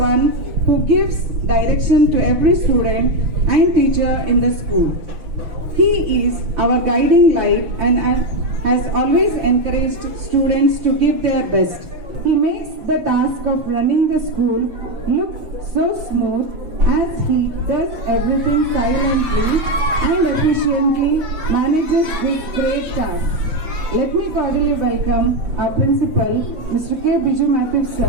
who gives direction to every student and teacher in the school. He is our guiding light and has always encouraged students to give their best. He makes the task of running the school look so smooth as he does everything silently and efficiently manages this great task. Let me cordially welcome our principal, Mr. K. Biju Matthew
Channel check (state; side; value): late; left; 6.3 ms